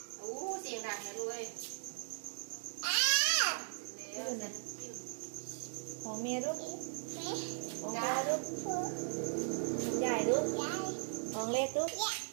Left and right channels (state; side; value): silent; left; digital silence